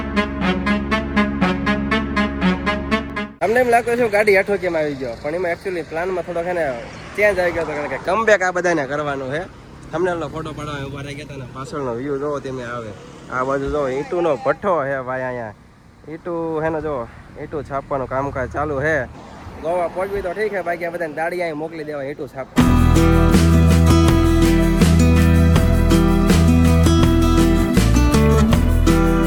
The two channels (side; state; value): both; identical; correlation 1.00